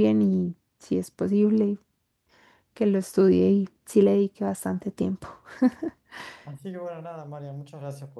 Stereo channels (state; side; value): identical; both; correlation 1.00